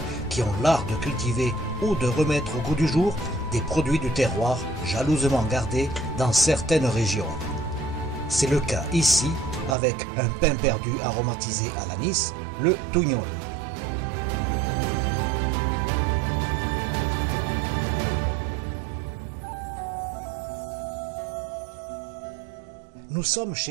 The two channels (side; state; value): left; drops out; at 9.8 s